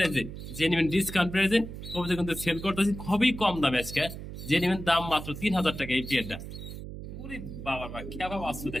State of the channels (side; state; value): right; noise; hum, 10 dB below the sound